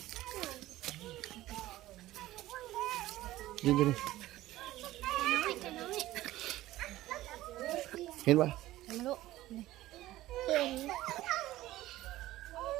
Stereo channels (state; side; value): quieter; left; 15.9 dB